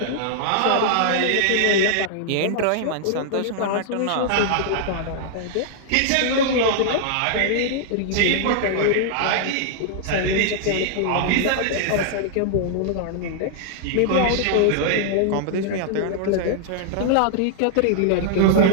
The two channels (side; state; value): both; different; correlation -0.01